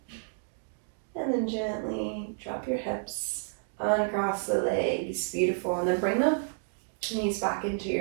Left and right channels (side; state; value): left; silent; digital silence